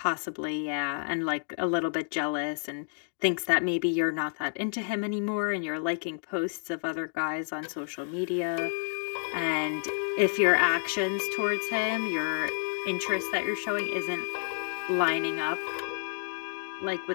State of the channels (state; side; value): silent; right; digital silence